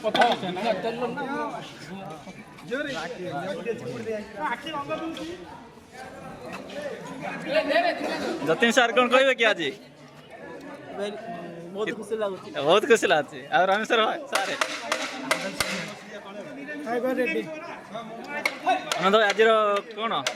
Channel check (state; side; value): identical; both; correlation 1.00